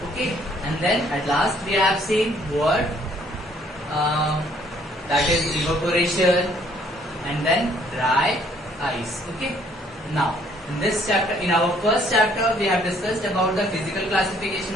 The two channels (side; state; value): both; normal; correlation 0.63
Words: Okay, and then at last we have seen what that is evaporation and then dry ice. Okay, now in this chapter, in our first chapter we have discussed about the physical classification